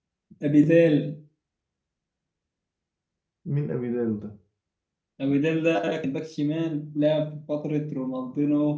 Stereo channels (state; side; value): identical; both; correlation 1.00